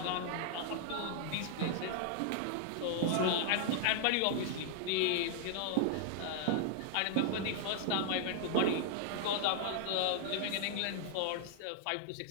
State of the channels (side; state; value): both; different; correlation 0.00